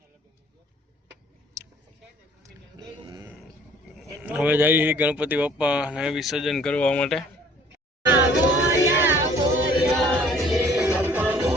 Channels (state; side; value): normal; both; correlation 0.55